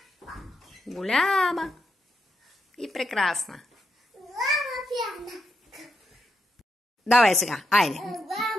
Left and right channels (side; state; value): both; normal; correlation 0.83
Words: Голяма и прекрасна. Давай сега, айде.